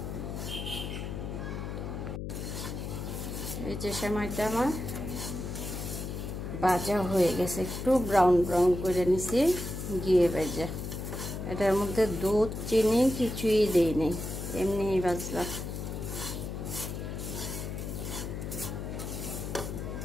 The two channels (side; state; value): left; noise; hum, 6 dB below the sound